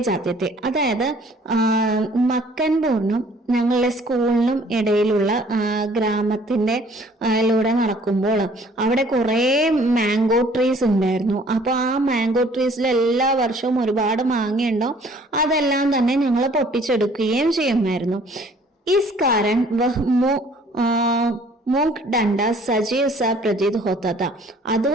जाते थे. അതായത് മക്കൻപൂരിനും ഞങ്ങളുടെ സ്കൂളിനും ഇടയിലുള്ള ഗ്രാമത്തിന്റെ ലൂടെ നടക്കുമ്പോൾ അവിടെ കുറെ മാംഗോ ട്രീസ് ഉണ്ടായിരുന്നു. അപ്പൊ ആ മാംഗോ ട്രീസിൽ എല്ലാ വർഷവും ഒരുപാട് മാങ്ങയുണ്ടാവും. അതെല്ലാം തന്നെ ഞങ്ങൾ പൊട്ടിച്ചെടുക്കുകയും ചെയ്യുമായിരുന്നു. इस कारण वह മൂക്ക് ഡണ്ട സജീവ് സ പ്രതീത് ഹോത്ത.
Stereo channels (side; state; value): both; normal; correlation 0.56